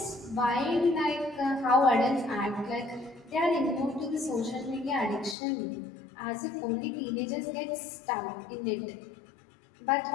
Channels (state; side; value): drops out; right; at 5.4 s